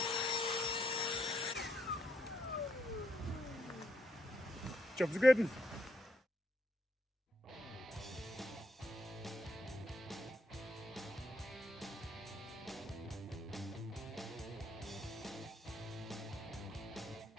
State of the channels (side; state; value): both; normal; correlation 0.76